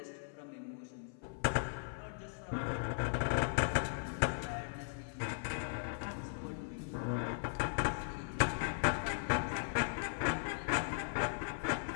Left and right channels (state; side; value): silent; right; 52 dB below the other